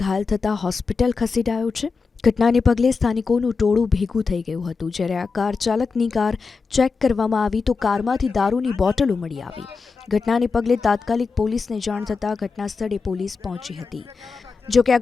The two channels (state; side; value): quieter; right; 4.8 dB